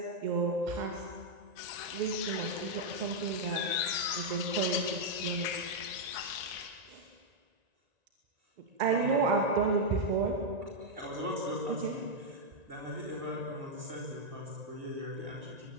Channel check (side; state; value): left; late; 1.9 ms